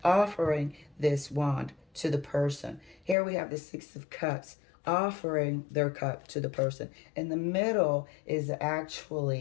offering this wand to the person. Here we have the Six of Cups, offering their cup to the person. In the middle is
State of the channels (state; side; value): drops out; right; at 3.2 s